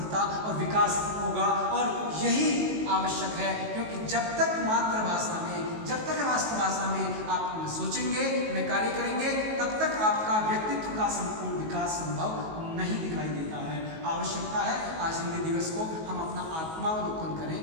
और विकास होगा। और यही आवश्यक है, क्योंकि जब तक मातृभाषा में, जब तक राष्ट्रभाषा में आप सोचेंगे, में कार्य करेंगे, तब तक आपका व्यक्तित्व का संपूर्ण विकास संभव नहीं दिखाई देता है। आवश्यकता है आज हिंदी दिवस को हम अपना आत्मावलोकन करें,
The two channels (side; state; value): left; late; 19 ms